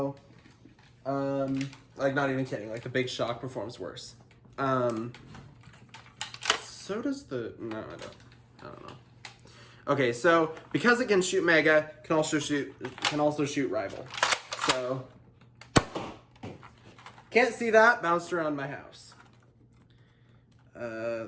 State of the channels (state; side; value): identical; both; correlation 1.00